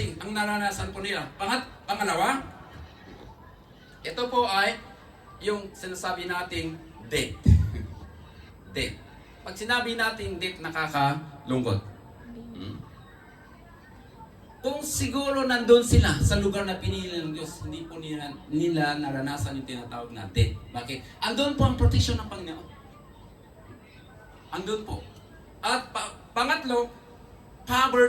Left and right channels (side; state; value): both; identical; correlation 1.00